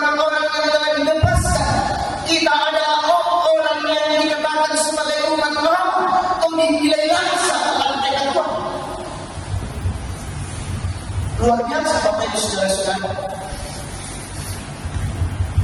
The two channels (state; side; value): identical; both; correlation 1.00